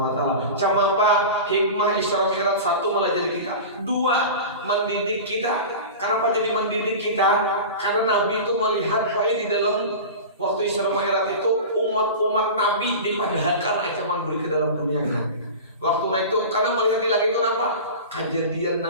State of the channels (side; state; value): both; inverted; correlation -0.31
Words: wa taala. Cuma apa? Hikmah Isra Mi'raj satu melajari kita. Dua, mendidik kita. Kenapa jadi mendidik kita? Karena Nabi itu melihat baik di dalam waktu Isra Mi'raj itu umat-umat Nabi dipadahkan ancaman beri ke dalam dunia kan. Waktu naik itu karena melihat di langit itu apa? Kejadian